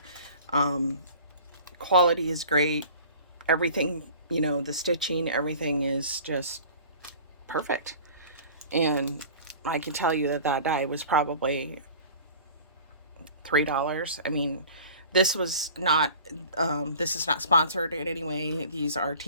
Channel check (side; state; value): both; inverted; correlation -0.44